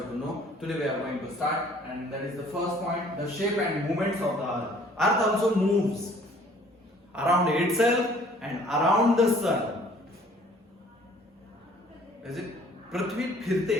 to know. Today we are going to start, and that is the first point, the shape and movements of the earth. Earth also moves around itself and around the sun. Is it? पृथ्वी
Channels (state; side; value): normal; both; correlation 0.55